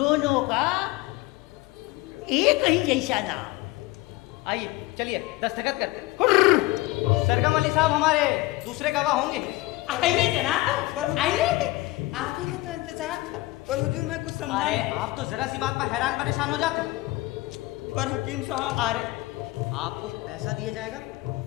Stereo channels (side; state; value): right; quieter; 19.8 dB